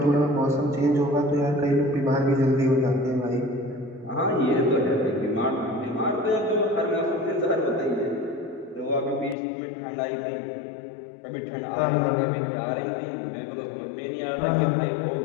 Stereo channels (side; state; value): right; drops out; at 9.3 s